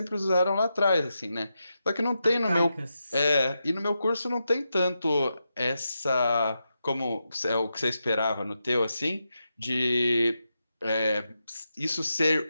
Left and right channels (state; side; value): inverted; both; correlation -0.87